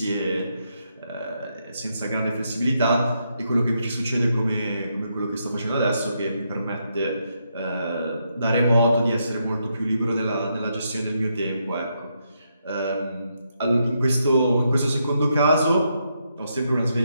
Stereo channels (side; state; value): both; inverted; correlation -0.80